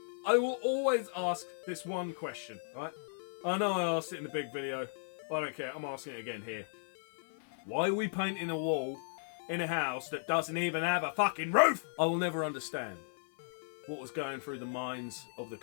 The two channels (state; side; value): silent; right; 54 dB below the other